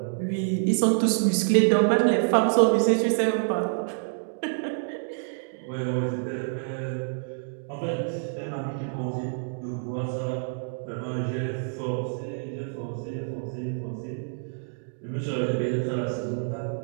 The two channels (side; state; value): left; silent; digital silence